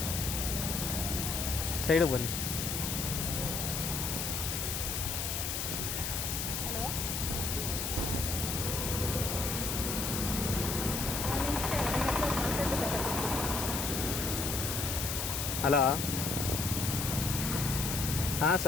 ಸೈಡಿಗೆ ಬನ್ನಿ. ಹಲೋ, ಹಾಂ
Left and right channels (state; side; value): noise; left; hiss, 2 dB below the sound